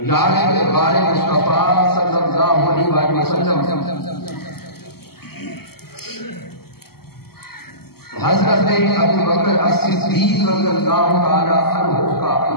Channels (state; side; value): late; right; 0.95 ms